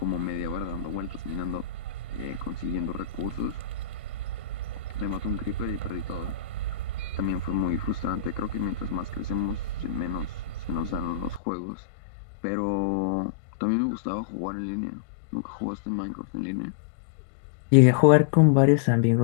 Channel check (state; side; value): drops out; right; at 11.4 s